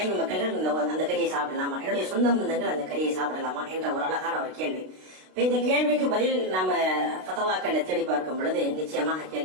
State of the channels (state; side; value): late; left; 32 ms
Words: மக்கள்கள் அந்த கறியை சாப்பிடலாமா? என்னுடைய சொந்த பந்தங்கள் அந்த கறியை சாப்பிடலாமா என்ற ஒரு அழகான ஒரு கேள்வி. இந்த கேள்விக்கு பதில் நாம ஃபதவாக்களை தேடி பார்க்கும் பொழுது நிச்சயமாக